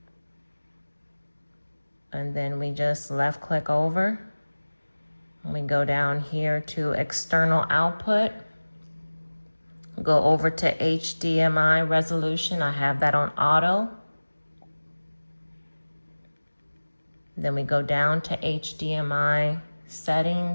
And then we just left click over. We go down here to external output. Go over to HDMI resolution. I have that on auto. Then we go down to HDMI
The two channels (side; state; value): both; inverted; correlation -1.00